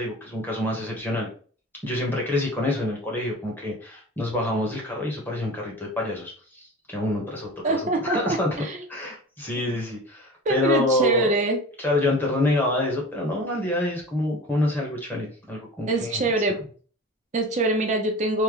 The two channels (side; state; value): both; normal; correlation 0.35